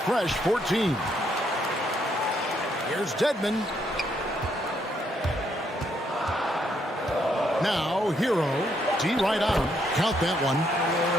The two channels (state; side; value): normal; both; correlation 0.73